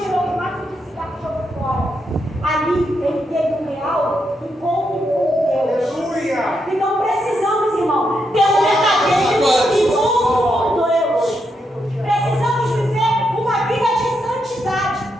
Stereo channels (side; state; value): both; normal; correlation 0.81